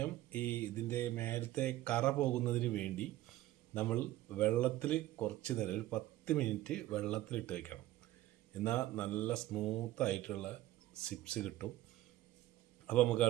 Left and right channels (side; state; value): left; quieter; 15.4 dB